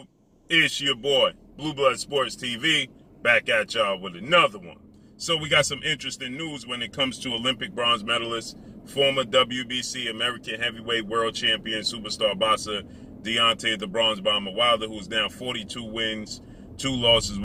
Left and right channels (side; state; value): both; identical; correlation 1.00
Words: It's your boy, Blue Blood Sports TV, back at y'all with another one. So we got some interesting news when it comes to Olympic bronze medalist, former WBC American Heavyweight World Champion Superstar boxer Deontay the Bronze Bomber Wilder, who's now 42 wins, 2 losses,